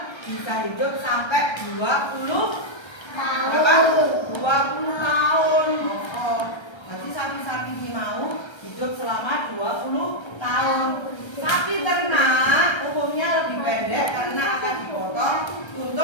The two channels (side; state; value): right; late; 1.3 ms